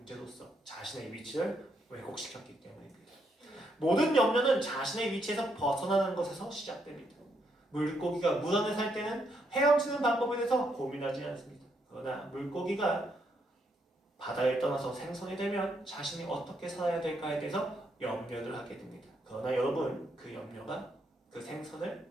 자신의 위치를 왜곡시켰기 때문입니다. 모든 염려는 자신의 위치에서 벗어나는 것에서 시작됩니다. 물고기가 물 안에 살 때는 헤엄치는 방법에 대해서 고민하지 않습니다. 그러나 물고기가 바다를 떠나서 생선이 되면 자신이 어떻게 살아야 될까에 대해서 염려를 하게 됩니다. 그러나 여러분, 그 염려가 그 생선을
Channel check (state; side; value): normal; both; correlation 0.76